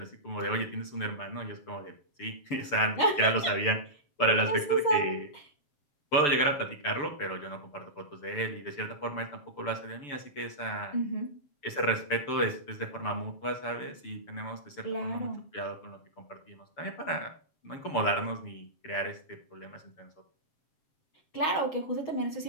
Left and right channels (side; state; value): right; late; 6.8 ms